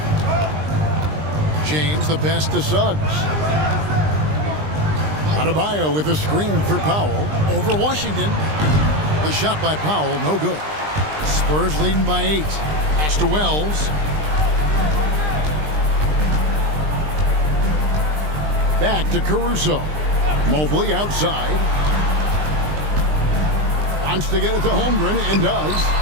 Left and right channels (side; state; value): left; late; 20 ms